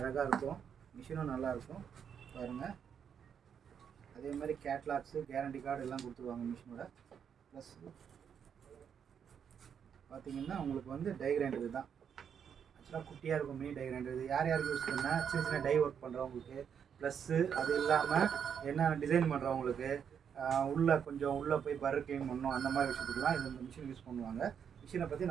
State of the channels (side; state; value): left; quieter; 7.7 dB